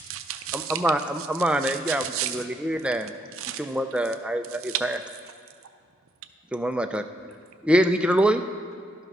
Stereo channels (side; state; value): both; normal; correlation 0.76